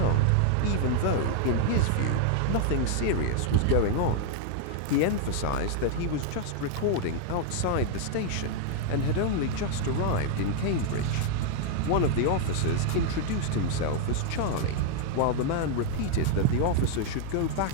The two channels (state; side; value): different; both; correlation 0.00